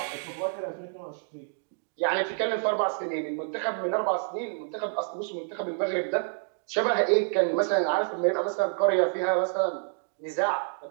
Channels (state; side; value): silent; left; digital silence